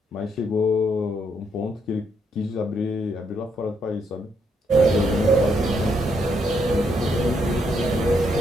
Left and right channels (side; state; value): both; normal; correlation 0.75